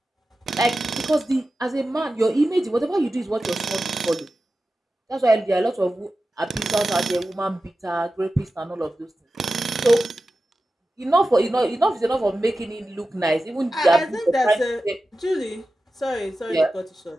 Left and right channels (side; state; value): both; normal; correlation 0.94